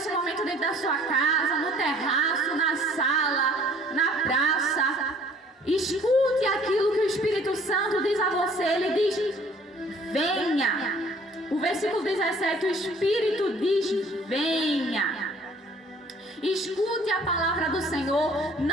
momento dentro da sua casa, no terraço, na sala, na praça, escute aquilo que o Espírito Santo diz a você. Ele diz: venha. O versículo 17, o Espírito diz: venha. Escute a palavra do Senhor,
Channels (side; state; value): both; normal; correlation 0.55